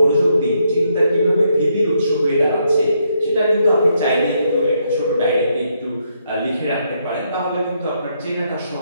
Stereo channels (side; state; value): both; inverted; correlation -0.76